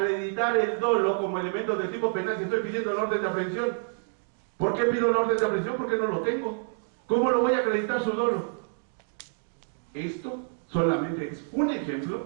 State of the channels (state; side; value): silent; left; 59 dB below the other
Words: el dolo como elemento del tipo penal si estoy pidiendo el orden de aprehensión? ¿Por qué pido el orden de aprehensión? Porque no lo tengo. ¿Cómo lo voy a acreditar su dolo? Esto solamente es un